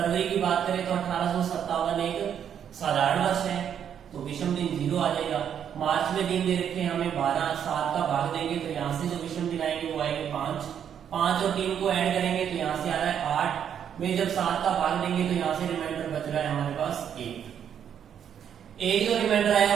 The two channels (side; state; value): left; quieter; 8.7 dB